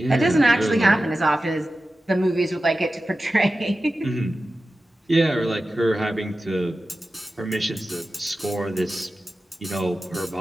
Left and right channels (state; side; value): normal; both; correlation 0.94